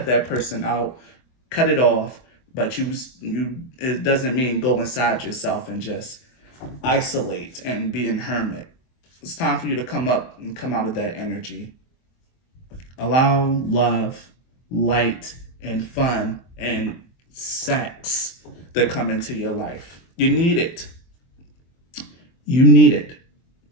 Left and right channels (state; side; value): late; right; 23 ms